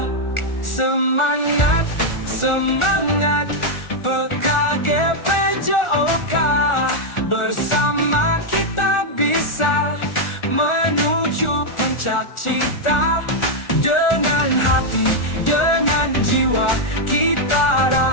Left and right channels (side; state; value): right; late; 1.4 ms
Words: Semangat, semangat PKGPJOK, bersama kita bisa menuju puncak cita. Dengan hati, dengan jiwa, kita